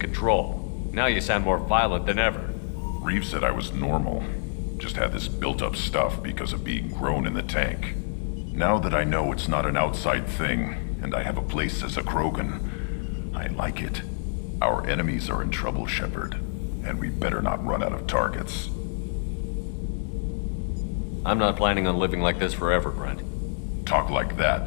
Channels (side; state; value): right; silent; digital silence